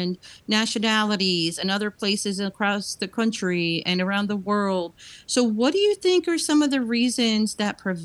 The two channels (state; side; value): identical; both; correlation 1.00